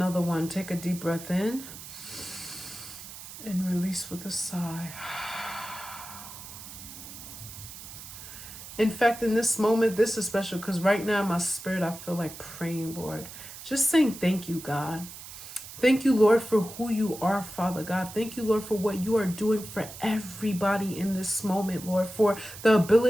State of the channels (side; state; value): right; noise; hiss, 13 dB below the sound